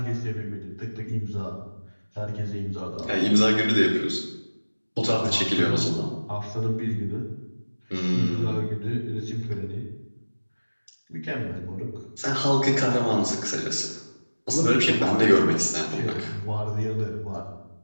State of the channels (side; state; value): both; inverted; correlation -1.00